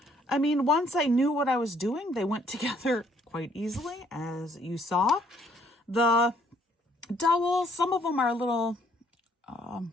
I mean, once I knew what I was doing, they went together quite easily, as you saw. The dowels, some of them are a little kind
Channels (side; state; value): both; normal; correlation 0.65